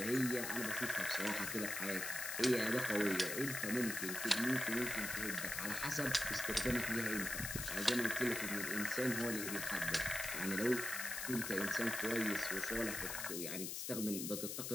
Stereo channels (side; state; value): left; noise; hiss, 4 dB below the sound